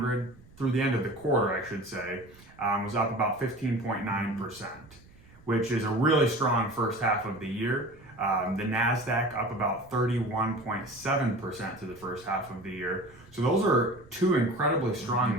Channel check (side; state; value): right; noise; rumble, 25 dB below the sound